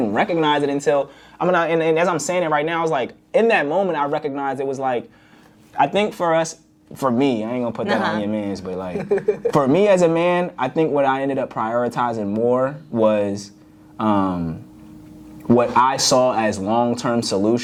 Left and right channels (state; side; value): identical; both; correlation 1.00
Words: recognize it until, and as I'm saying it right now, I was like, in that moment, I recognized it was like, I think for me, I ain't gonna put that on your mans, but like, for me as a man, I think what I ended up prioritizing more was what I saw as long-term